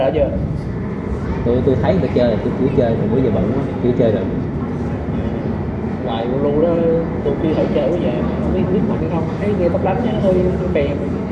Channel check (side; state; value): both; identical; correlation 1.00